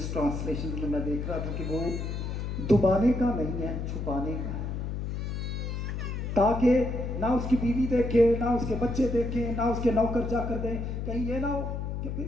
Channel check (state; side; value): noise; left; hum, 3 dB below the sound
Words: ٹرانسلیشن میں دیکھ رہا تھا کہ وہ دبانے کا نہیں ہے، چھپانے کا ہے، تاکہ نہ اس کی بیوی دیکھے، نہ اس کے بچے دیکھیں، نہ اس کے نوکر جا کر دیں، کہیں یہ نہ ہو کہ